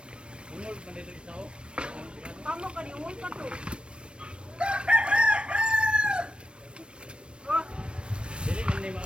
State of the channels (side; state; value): left; late; 0.057 ms